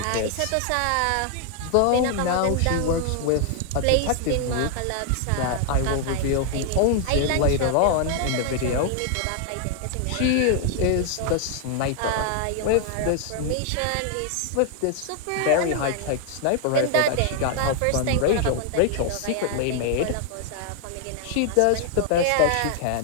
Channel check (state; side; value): different; both; correlation 0.00